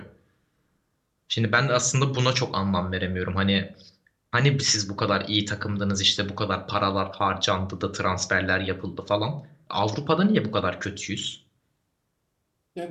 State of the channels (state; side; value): identical; both; correlation 1.00